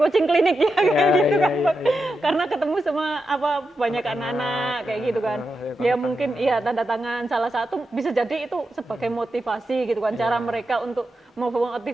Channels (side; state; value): both; normal; correlation 0.88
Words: coaching klinik ya kayak gitu kan. Karena ketemu sama banyak anak-anak kayak gitu kan. Ya mungkin iya tanda tangan salah satu bisa jadi itu sebagai motivasi gitu kan, cara mereka untuk